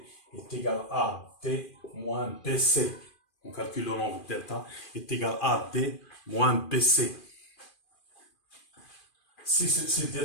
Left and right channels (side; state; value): right; late; 2.4 ms